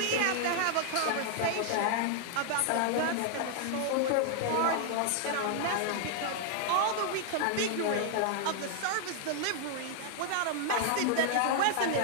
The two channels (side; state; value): both; different; correlation 0.00